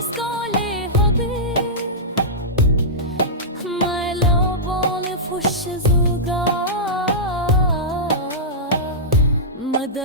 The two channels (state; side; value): normal; both; correlation -0.13